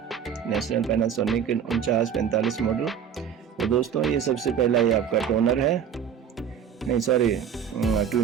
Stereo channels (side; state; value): left; quieter; 8.1 dB